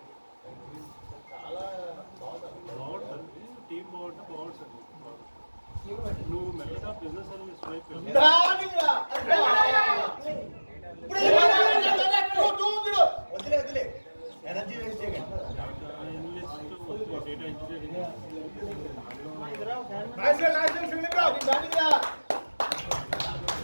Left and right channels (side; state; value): both; inverted; correlation -1.00